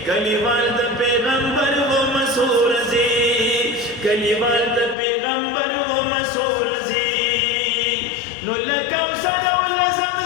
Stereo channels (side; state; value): right; drops out; at 5.0 s